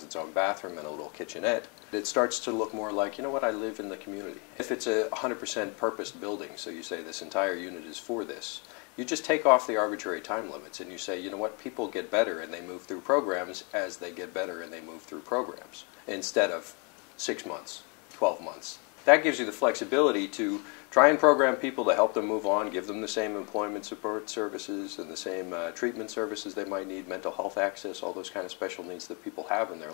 its own bathroom and a little kitchenette. It starts to look more like, you know what, I live in the community. If it's a 100% purposed building, so you say this entire unit is for this, you just take off the arbitrary time limits and you say, you know what, people get better and they move through programs as they get better and they move through programs, instead of 6 months, 12 months. That gives you the flexibility to try and program people to help them move on, give them the same employment support services and the same treatment services they might need, mental health access, all those kind of special needs that people have in their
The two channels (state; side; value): quieter; right; 33.8 dB